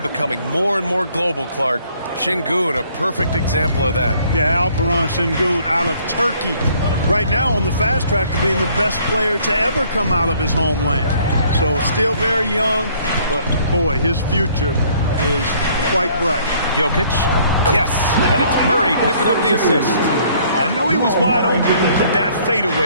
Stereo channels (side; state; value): both; inverted; correlation -0.61